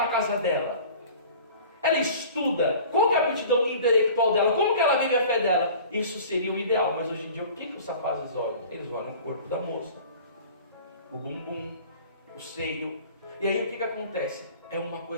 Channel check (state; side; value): inverted; both; correlation -0.44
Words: casa dela? Ela estuda. Qual que é a aptidão intelectual dela? Como que ela vive a fé dela? Isso seria o ideal. Mas hoje em dia, o que os rapazes olham? Eles olham o corpo da moça, o bumbum, o seio. E aí o que acontece? É uma